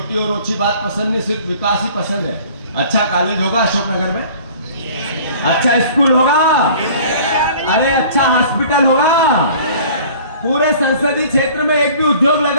और ओछी बात पसंद नहीं, सिर्फ विकास ही पसंद है। अच्छा कॉलेज होगा अशोकनगर में, अच्छा स्कूल होगा, अरे अच्छा हॉस्पिटल होगा, पूरे संसदीय क्षेत्र में एक भी उद्योग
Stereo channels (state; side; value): inverted; both; correlation -0.48